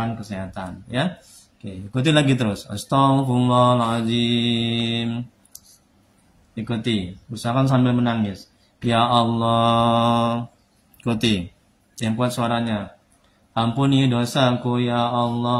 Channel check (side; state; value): both; identical; correlation 1.00